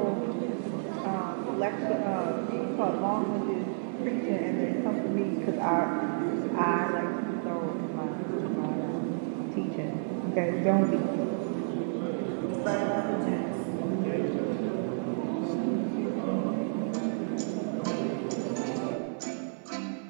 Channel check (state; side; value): silent; left; digital silence